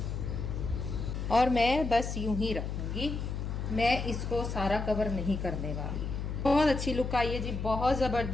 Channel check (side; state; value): left; noise; hum, 4 dB below the sound